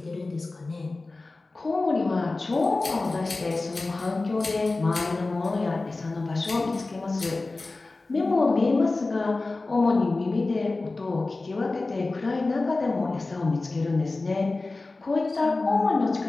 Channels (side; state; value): right; quieter; 3.3 dB